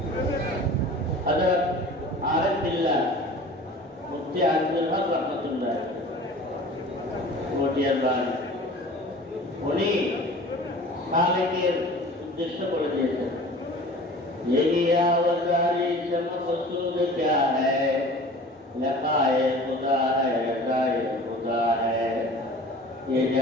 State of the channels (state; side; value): normal; both; correlation 0.42